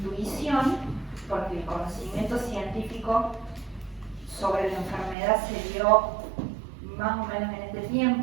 porque el conocimiento científico sobre la enfermedad se dio más o menos en este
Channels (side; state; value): left; drops out; at 5.2 s